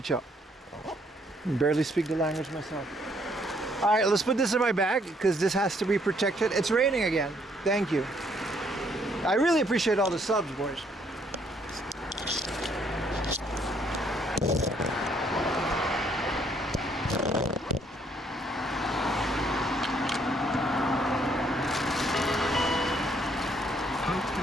Barely speak the language myself. Alright, let's put this in my bag because this has to be protected. It's raining again. Thank you. I really appreciate all the subs, boys. Hope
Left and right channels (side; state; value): both; normal; correlation 0.67